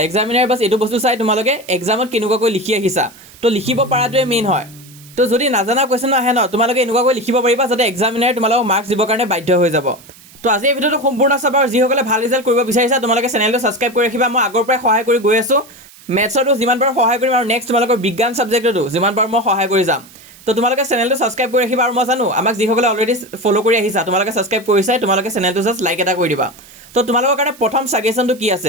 এক্সামিনাৰ বাছ এইটো বস্তু চাই তোমালোকে এক্সামত কেনেকুৱাকৈ লিখি আহিছা। তো লিখিব পৰাটোৱে মেইন হয়। তো যদি নাজানা কুৱেশ্যন আহে ন, তোমালোকে এনেকুৱাকৈ লিখিব পাৰিবা যাতে এক্সামিনাৰে তোমালোকক মাৰ্কছ দিবৰ কাৰণে বাধ্য হৈ যাব। তো আজি এই ভিডিঅ'টো সম্পূৰ্ণ চাবা, আৰু যিসকলে ভাল ৰিজাল্ট কৰিব বিচাৰিছা তোমালোকে চেনেলটো ছাবস্ক্ৰাইব কৰি ৰাখিবা। মই আগৰ পৰাই সহায় কৰি গৈ আছোঁ, মেথছতো যিমান পাৰোঁ সহায় কৰিম, আৰু নেক্সট তোমালোকৰ বিজ্ঞান ছাবজেক্টতো যিমান পাৰোঁ মই সহায় কৰি যাম। তো তোমালোকে চেনেলটো ছাবস্ক্ৰাইব কৰি ৰাখিবা। আৰু মই জানো আমাক যিসকলে অলৰেডি ফ'ল' কৰি আহিছা, তোমালোকে ছাবস্ক্ৰাইব কৰিছাই, তোমালোকে চেনেলটো জাষ্ট লাইক এটা কৰি দিবা। তো তোমালোকৰ কাৰণে প্ৰথম ছাজেশ্যনটো কি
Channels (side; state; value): right; noise; hiss, 23 dB below the sound